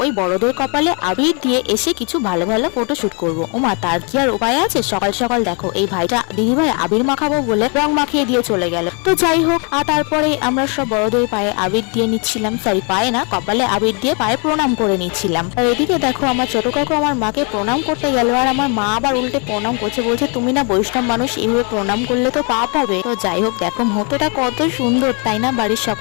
ওই বড়দের কপালে আবির দিয়ে এসে কিছু ভালো ভালো ফটো শুট করবো। ওমা, তার কি আর উপায় আছে? সকাল সকাল দেখো এই ভাইটা দিদিভাই আবির মাখাবো বলে রং মাখিয়ে দিয়ে চলে গেল। তো যাই হোক, আর তারপরে আমরা সব বড়দের পায়ে আবির দিয়ে নিচ্ছিলাম, সরি পায়ে না, কপালে আবির দিয়ে পায়ে প্রণাম করে নিচ্ছিলাম। আর এদিকে দেখো আমার ছোট কাকু আমার মাকে প্রণাম করতে গেল, আর আমার মা আবার উল্টে প্রণাম করছে, বলছে তুমি না বৈষ্ণব মানুষ, এইভাবে প্রণাম করলে তো পাপ হবে। তো যাই হোক, দেখো মুহূর্তটা কত সুন্দর তাই না, বাড়ির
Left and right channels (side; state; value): right; quieter; 35.6 dB